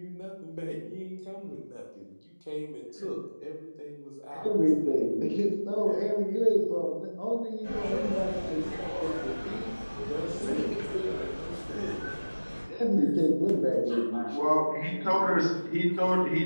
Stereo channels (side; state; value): both; inverted; correlation -1.00